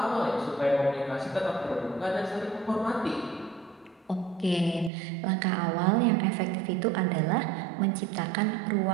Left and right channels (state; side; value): drops out; left; at 4.9 s